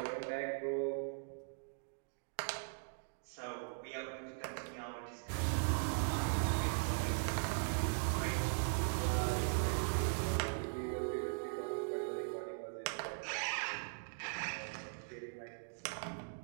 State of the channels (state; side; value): silent; left; digital silence